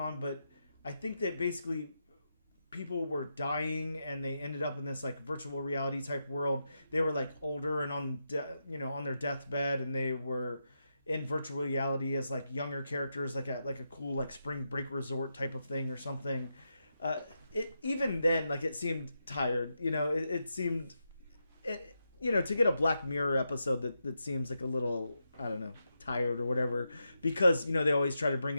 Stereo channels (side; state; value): both; inverted; correlation -0.86